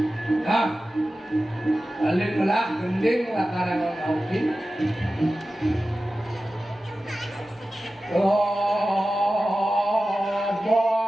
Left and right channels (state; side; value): normal; both; correlation 0.94